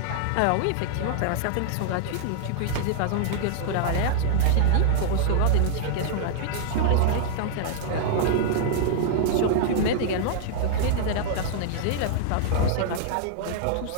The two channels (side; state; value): both; different; correlation -0.01